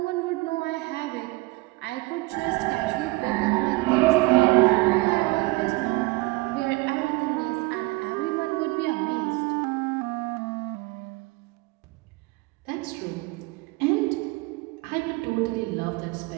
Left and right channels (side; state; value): left; quieter; 23.4 dB